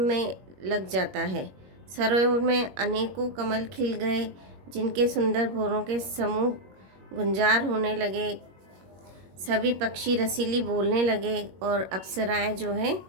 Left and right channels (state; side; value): late; left; 21 ms